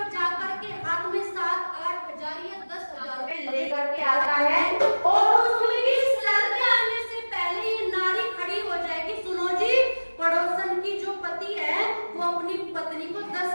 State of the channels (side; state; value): both; inverted; correlation -1.00